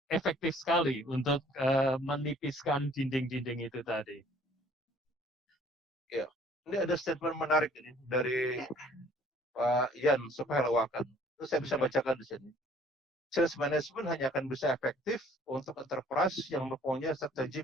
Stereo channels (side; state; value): both; normal; correlation 0.56